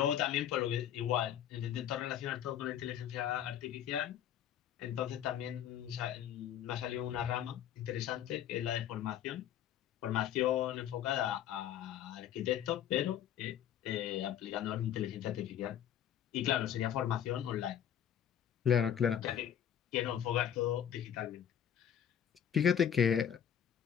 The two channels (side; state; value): right; quieter; 9.8 dB